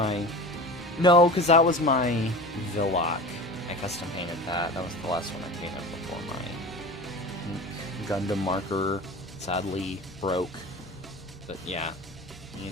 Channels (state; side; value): normal; both; correlation 0.34